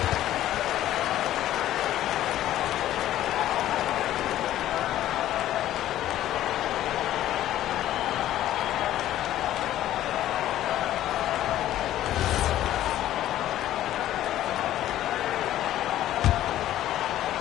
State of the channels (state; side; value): quieter; right; 13.2 dB